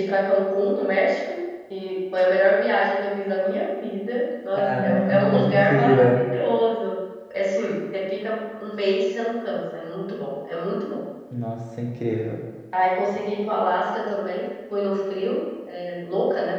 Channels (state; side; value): identical; both; correlation 1.00